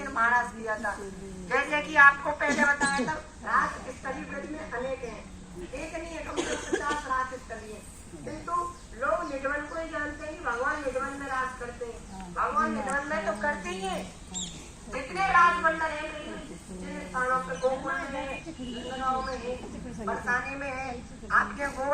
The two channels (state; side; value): identical; both; correlation 1.00